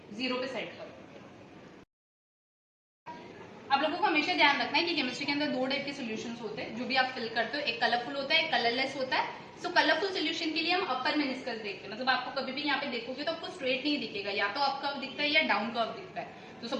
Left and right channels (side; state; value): both; identical; correlation 1.00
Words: जीरो पे सेट करो। आप लोगों को हमेशा ध्यान रखना है कि केमिस्ट्री के अंदर दो टाइप के सॉल्यूशंस होते हैं जो भी आप फिल करते हो, एक कलरफुल होता है, एक कलरलेस होता है। सो कलरफुल सॉल्यूशन के लिए हम अपर मेनिस्कस देखते हैं, मतलब आपको कभी भी यहाँ पे देखोगे तो आपको स्ट्रेट नहीं दिखेगा, या तो अप कर्व दिखता है या डाउन कर्व दिखता है। तो